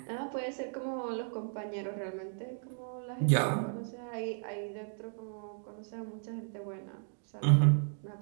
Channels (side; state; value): left; silent; digital silence